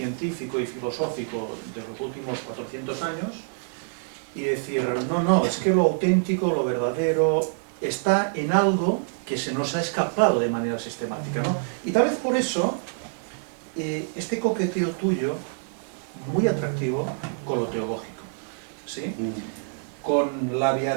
y filosófico de los últimos 400 años y decir, no, es que lo auténtico, lo verdadero, está en algo que se nos ha escapado de manera sistemática, ¿no? Y tal vez por eso, este coqueteo tuyo, muy atractivo con lo teológico, ¿sí? Con la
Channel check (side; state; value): left; silent; digital silence